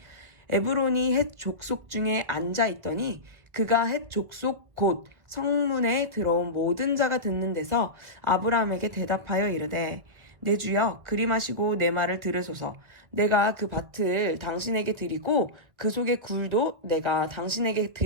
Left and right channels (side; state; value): left; late; 1.8 ms